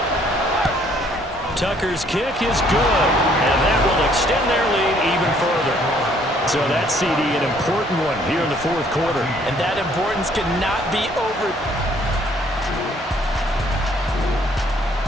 Tucker's kick is good, and that will extend their lead even further. So that CD, an important one here in the 4th quarter. And that importance cannot be over.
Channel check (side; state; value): both; normal; correlation 0.63